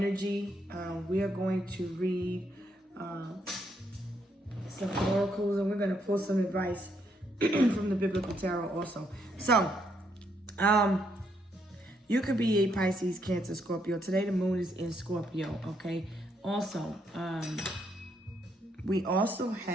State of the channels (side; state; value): both; normal; correlation 0.75